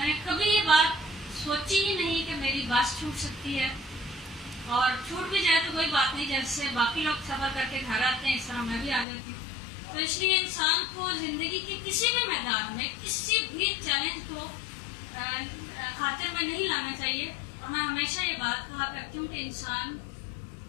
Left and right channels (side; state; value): right; drops out; at 9.1 s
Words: نے کبھی یہ بات سوچی ہی نہیں کہ میری بس چھوٹ سکتی ہے، اور چھوٹ بھی جائے تو کوئی بات نہیں، جیسے باقی لوگ سفر کر کے گھر آتے ہیں اس طرح میں بھی آ جاتی ہوں۔ تو اس لیے انسان کو زندگی کے کسی بھی میدان میں کسی بھی چیلنج کو خاطر میں نہیں لانا چاہیے، اور میں ہمیشہ یہ بات کہا کرتی ہوں کہ انسان